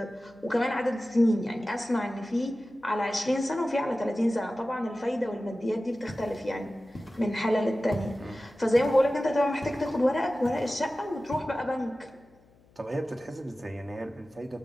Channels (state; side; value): noise; left; hum, 30 dB below the sound